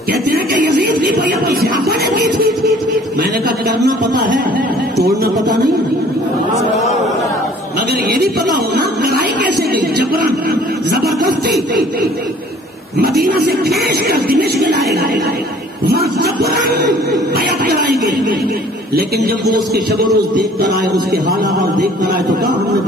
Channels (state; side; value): normal; both; correlation 0.53